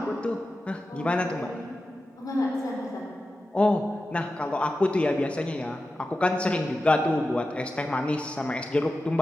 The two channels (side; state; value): both; normal; correlation 0.92